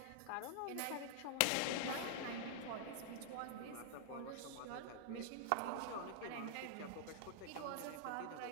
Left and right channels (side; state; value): both; different; correlation -0.01